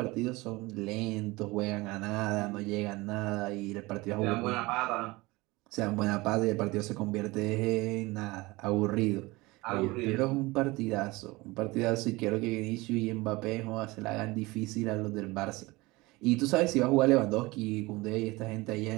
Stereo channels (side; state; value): left; quieter; 22.0 dB